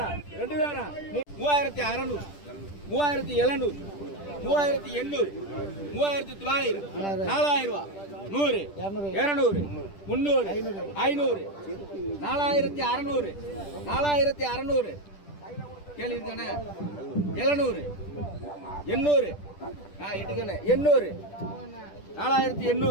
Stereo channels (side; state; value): right; late; 10 ms